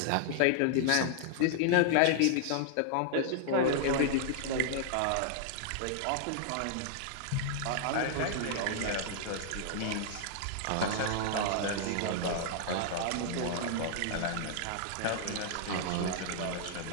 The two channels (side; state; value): both; different; correlation -0.01